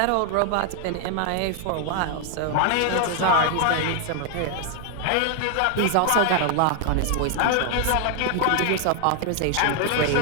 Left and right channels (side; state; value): both; different; correlation 0.00